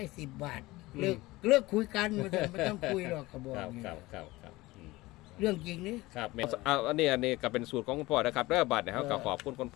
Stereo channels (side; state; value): right; quieter; 19.9 dB